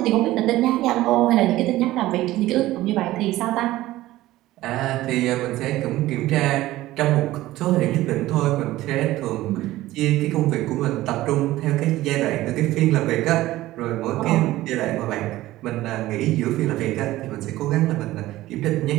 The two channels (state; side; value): quieter; left; 16.4 dB